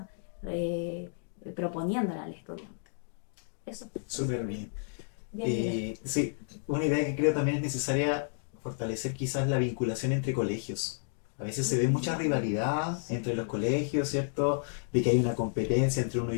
proponiéndole al estudiante. Eso. Súper bien. Bien, Sí, una idea que creo también es necesaria fortalecer quizás la vinculación entre colegios. A veces se ve mucha rivalidad entre los colegios, ¿cierto? De que hay una competencia entre uno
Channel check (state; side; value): silent; right; digital silence